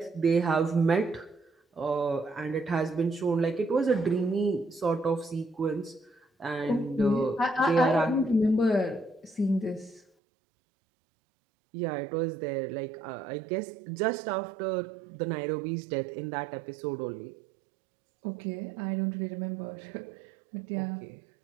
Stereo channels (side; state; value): left; drops out; at 10.1 s